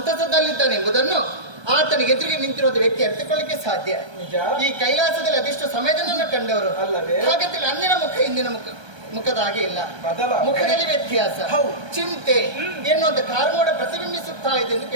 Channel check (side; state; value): left; late; 1.3 ms